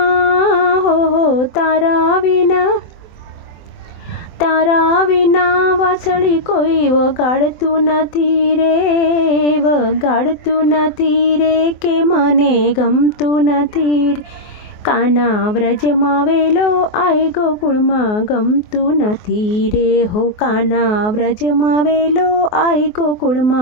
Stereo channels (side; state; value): right; late; 24 ms